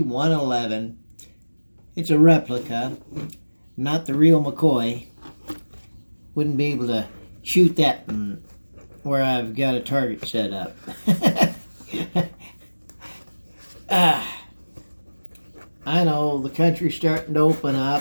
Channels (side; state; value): both; inverted; correlation -1.00